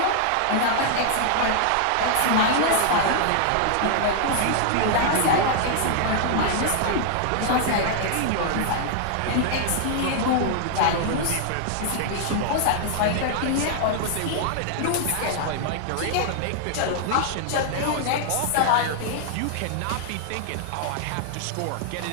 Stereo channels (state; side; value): different; both; correlation -0.01